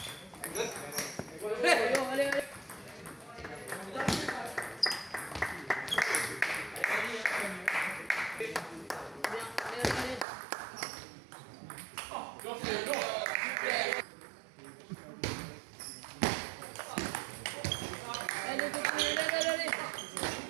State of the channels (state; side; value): drops out; left; at 10.2 s